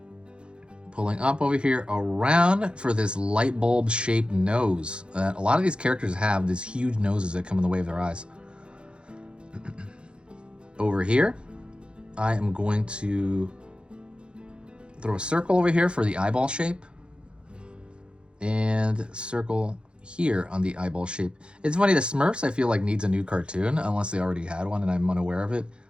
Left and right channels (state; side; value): late; left; 0.055 ms